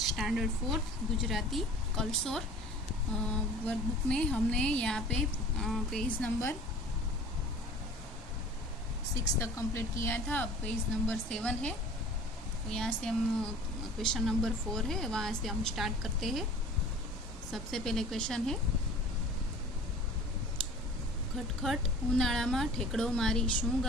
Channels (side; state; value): both; normal; correlation 0.44